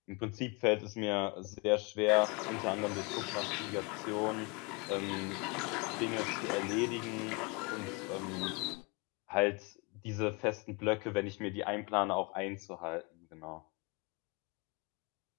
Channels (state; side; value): quieter; right; 29.5 dB